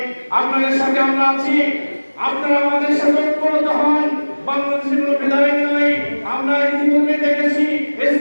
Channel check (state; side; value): inverted; both; correlation -1.00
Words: আপনাদের সাথে আমরা আছি। আপনারা আমাদের সাথে ঐক্যবদ্ধ হন। বাংলাদেশের কোনো ভেদাভেদ নাই। আমরা ইতিপূর্বে দেখেছি